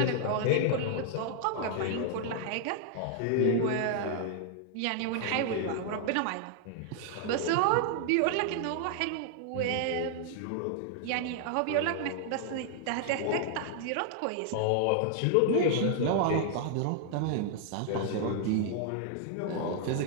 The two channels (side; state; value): both; different; correlation 0.00